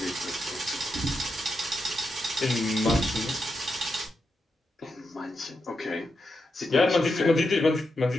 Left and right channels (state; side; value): normal; both; correlation 0.85